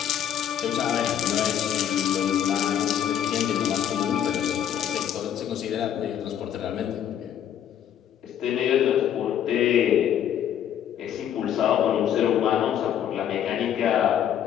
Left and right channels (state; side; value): quieter; right; 9.9 dB